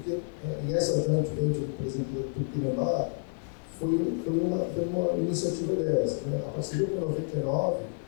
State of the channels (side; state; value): right; silent; 58 dB below the other